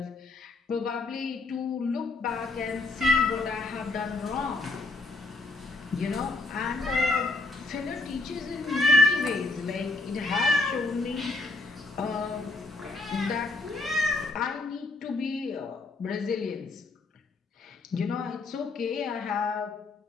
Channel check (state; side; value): quieter; right; 3.3 dB